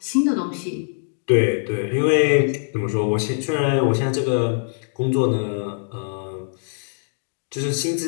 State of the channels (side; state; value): right; silent; digital silence